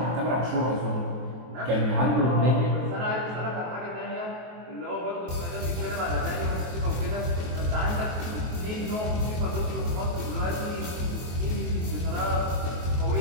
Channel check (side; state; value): left; late; 23 ms